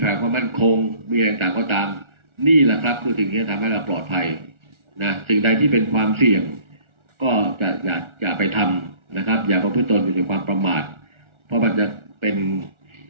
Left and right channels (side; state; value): left; late; 1.4 ms